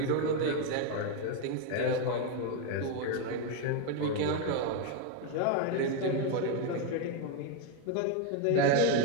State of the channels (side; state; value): both; different; correlation 0.01